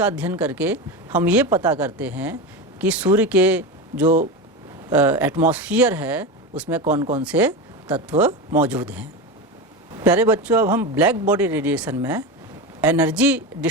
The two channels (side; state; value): both; normal; correlation 0.20